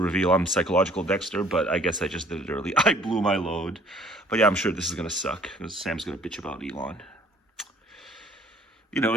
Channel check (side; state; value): both; normal; correlation 0.56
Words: reveal I'm psychological Dexter. But I guess I just did it early. I blew my load. But yeah, I'm sure this is gonna suck because Sam's gonna bitch about Elon.